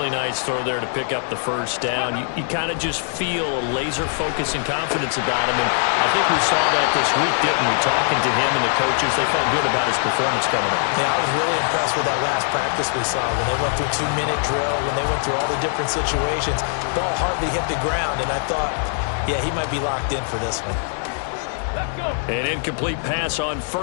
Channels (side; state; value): right; silent; 64 dB below the other